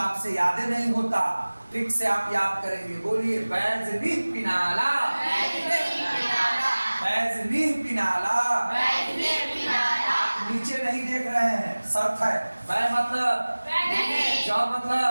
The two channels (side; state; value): both; inverted; correlation -1.00